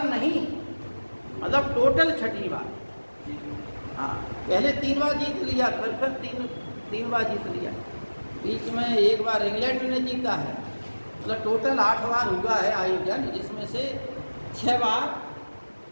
नहीं, मतलब टोटल 6ठी बार। हाँ, पहले 3 बार जीत लिया, फिर 3 बार जीत लिया, बीच में 1 बार इंग्लैंड ने जीता है, मतलब टोटल 8 बार हुआ है आयोजन, जिसमें से 6 बार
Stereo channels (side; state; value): both; inverted; correlation -1.00